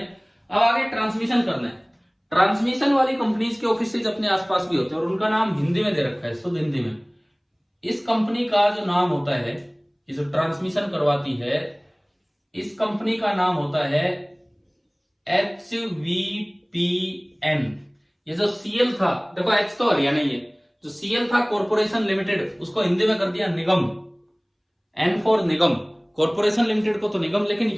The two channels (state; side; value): identical; both; correlation 1.00